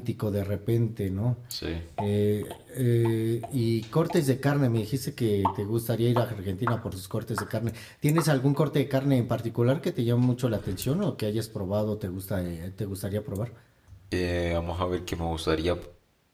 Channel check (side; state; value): both; identical; correlation 1.00